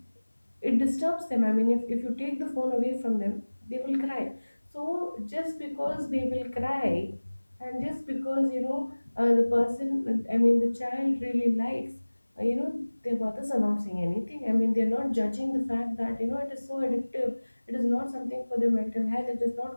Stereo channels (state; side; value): inverted; both; correlation -1.00